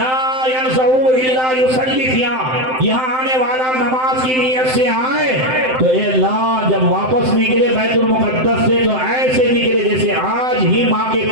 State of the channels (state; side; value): late; left; 7.7 ms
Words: यनज़उ इल्ला युसल्ली फिहा, यहाँ आने वाला नमाज की नीयत से आए तो ए अल्लाह जब वापस निकले बैतुल मुक़द्दस से तो ऐसे निकले जैसे आज ही माँ के